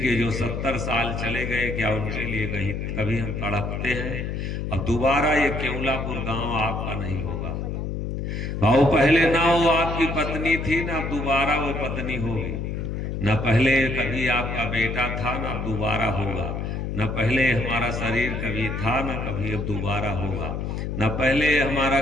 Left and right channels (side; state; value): left; noise; hum, 3 dB below the sound